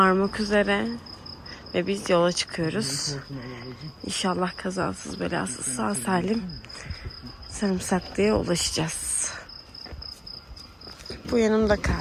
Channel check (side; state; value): both; identical; correlation 1.00